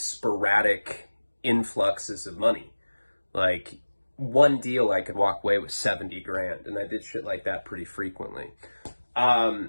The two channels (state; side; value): inverted; both; correlation -1.00